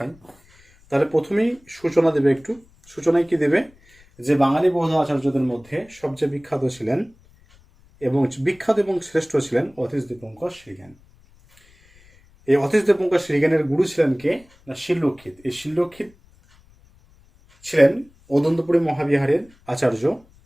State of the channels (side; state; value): left; noise; rumble, 29 dB below the sound